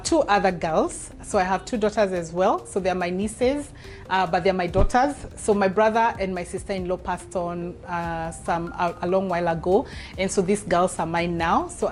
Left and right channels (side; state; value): both; identical; correlation 1.00